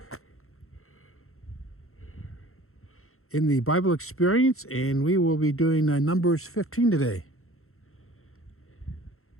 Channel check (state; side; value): late; right; 0.62 ms